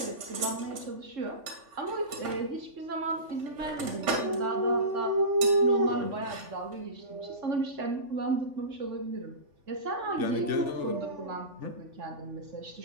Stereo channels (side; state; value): left; late; 3.4 ms